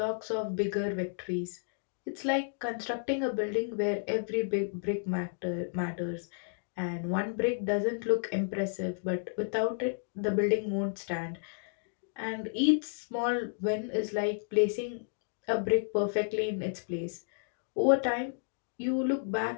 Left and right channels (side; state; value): right; silent; digital silence